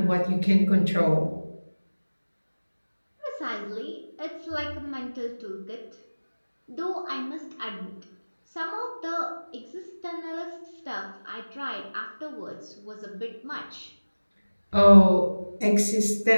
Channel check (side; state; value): both; inverted; correlation -1.00